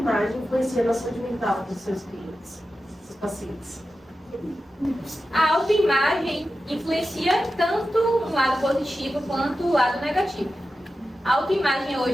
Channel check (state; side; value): normal; both; correlation 0.92